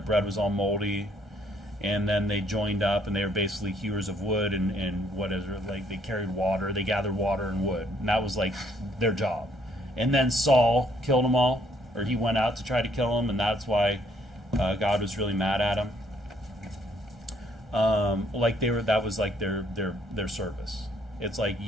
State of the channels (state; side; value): normal; both; correlation 0.67